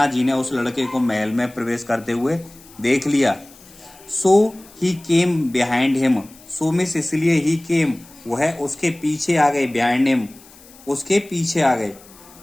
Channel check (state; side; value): noise; left; hiss, 23 dB below the sound